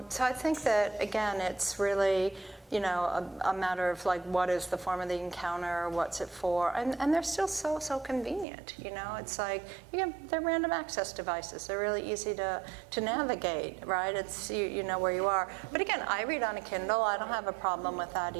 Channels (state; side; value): drops out; left; at 8.5 s